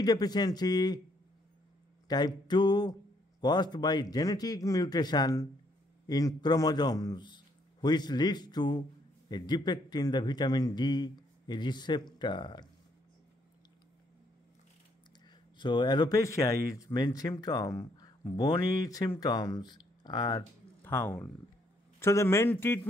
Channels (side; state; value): both; normal; correlation 0.70